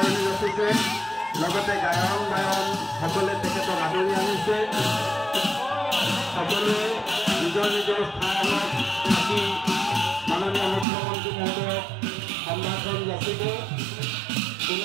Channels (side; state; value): left; drops out; at 10.9 s